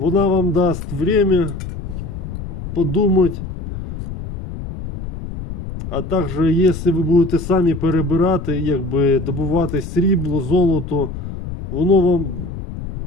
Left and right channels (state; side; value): noise; left; rumble, 8 dB below the sound